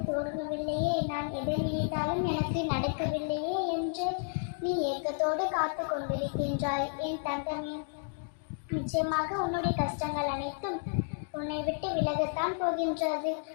தோணவில்லையே, நான் எதை நினைத்தாலும் எனக்கு நடக்கவில்லையே என்று நீ ஏக்கத்தோடு காத்து கொண்டிருக்கின்றாய். என் தங்கமே, நிச்சயமாக உன்னுடைய கஷ்டங்கள் அனைத்தும் உன்னை விட்டு விலகத்தான் போகின்றது.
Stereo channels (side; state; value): right; silent; digital silence